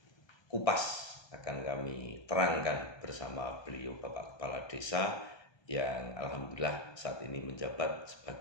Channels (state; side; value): late; right; 1.3 ms